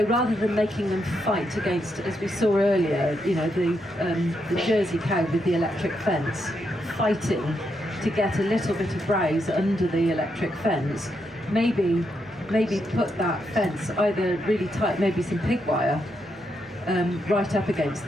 rather than making them fight against, as we saw earlier, the Jersey cow with the electric fence, fighting to get a little bit of browse under the electric fence, maybe put that fence either really tight, maybe some pig wire, right up against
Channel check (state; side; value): normal; both; correlation 0.81